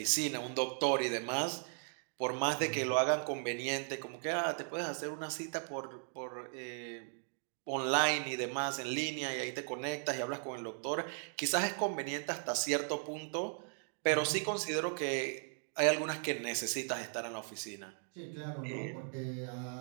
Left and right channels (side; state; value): left; silent; 53 dB below the other